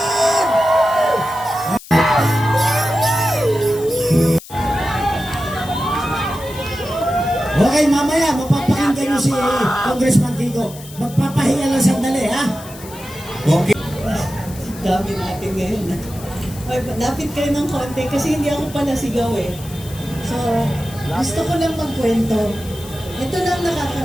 Okay, mamaya mapapakinggan niyo si Congressman Kiko. Magpapahinga lang sandali, ha? Okay. Dami natin ngayon. Ay, lapit kayo ng konti kasi hindi ako pala sigaw eh. So, gusto ko lang magkwento. Ito lang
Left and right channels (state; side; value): noise; left; hiss, 17 dB below the sound